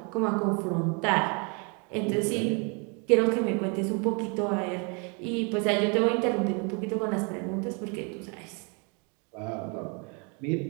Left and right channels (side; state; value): left; quieter; 34.1 dB